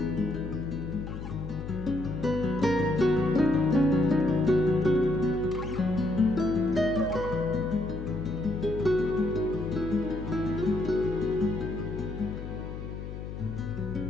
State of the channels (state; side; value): noise; left; hum, 8 dB below the sound